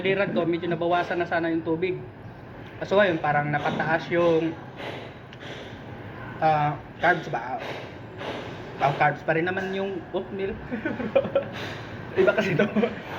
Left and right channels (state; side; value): identical; both; correlation 1.00